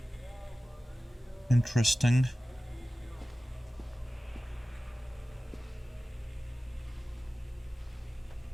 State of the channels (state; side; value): normal; both; correlation 0.96